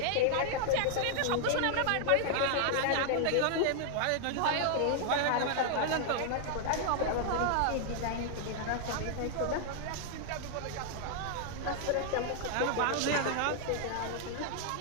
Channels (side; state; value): both; different; correlation 0.00